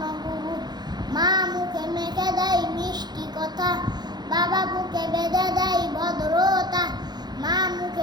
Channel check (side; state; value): left; late; 0.20 ms